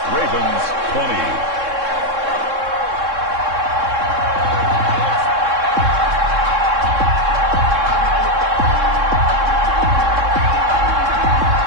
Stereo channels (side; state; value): left; late; 3.6 ms